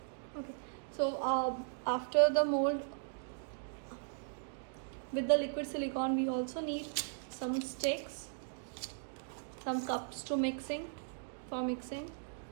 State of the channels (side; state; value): left; silent; digital silence